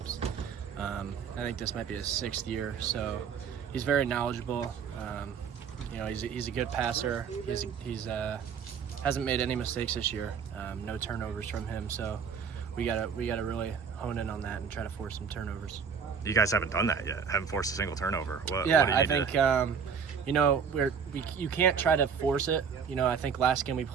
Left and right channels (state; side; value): quieter; left; 6.6 dB